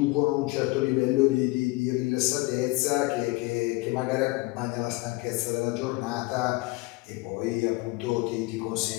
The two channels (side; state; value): right; quieter; 22.7 dB